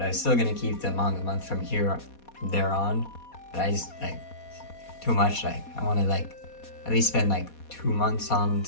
I was still gonna keep the manga month from there on, but I just like too much. Like I want to like at least spend like 2 months on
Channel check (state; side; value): late; right; 4.2 ms